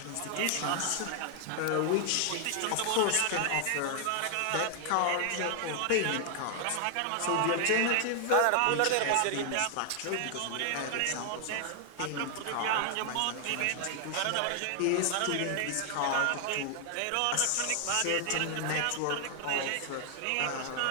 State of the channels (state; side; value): different; both; correlation 0.00